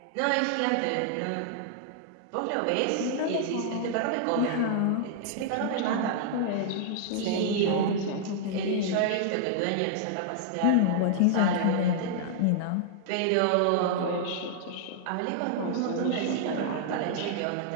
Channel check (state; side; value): different; both; correlation -0.01